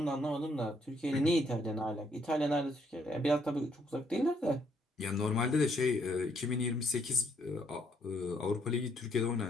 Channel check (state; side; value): normal; both; correlation 0.71